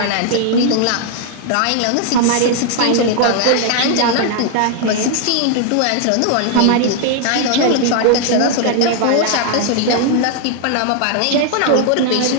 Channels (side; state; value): both; different; correlation 0.00